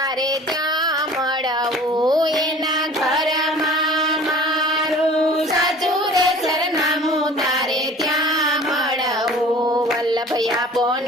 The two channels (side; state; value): both; normal; correlation 0.45